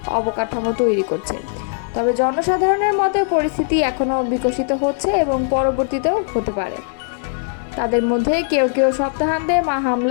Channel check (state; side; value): silent; right; 66 dB below the other